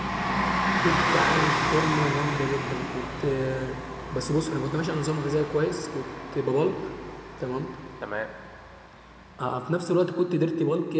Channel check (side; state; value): both; identical; correlation 1.00